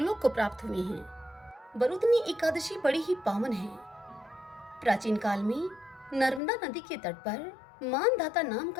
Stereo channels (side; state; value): right; drops out; at 6.4 s